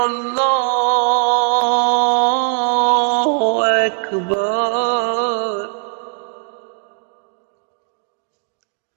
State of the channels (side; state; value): left; silent; digital silence